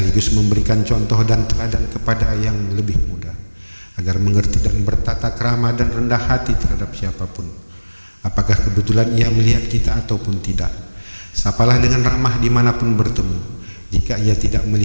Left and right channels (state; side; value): inverted; both; correlation -1.00